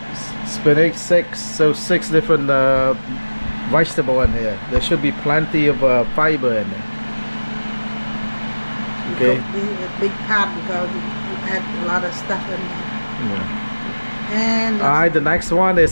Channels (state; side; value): inverted; both; correlation -1.00